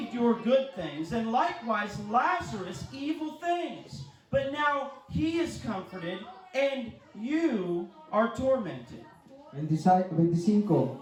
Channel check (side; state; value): both; identical; correlation 1.00